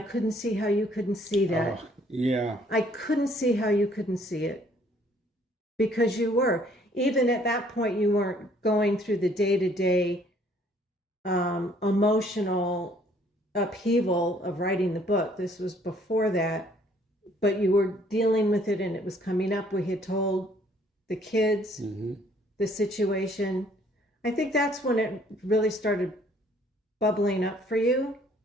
see how you couldn't see that. Yeah. I couldn't see how you couldn't see it, because you were. Even at that point, you weren't going through the day-to-day emotional upheaval of writing the book. This was before that, but you were dealing with it, and it was coming up. We had told the kids the situation. I think that's when it really started bubbling up for you,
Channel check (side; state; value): both; normal; correlation 0.62